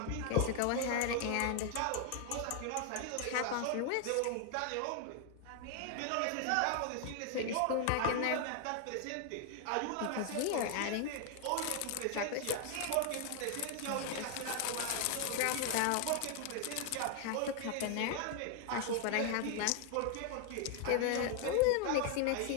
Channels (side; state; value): both; different; correlation 0.00